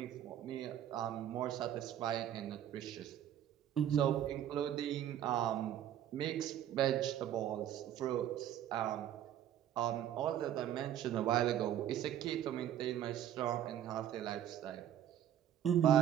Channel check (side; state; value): left; quieter; 10.9 dB